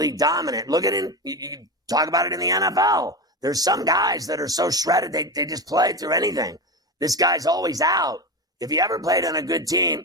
dominant. Look at it. You talk about it in the NFL. There's some guys that are so shredded, they just play through anything. This guy's always out. If he ever played on a good team,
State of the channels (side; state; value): both; normal; correlation 0.20